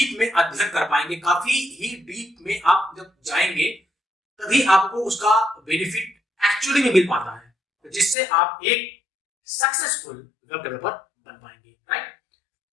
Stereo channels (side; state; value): right; drops out; at 8.2 s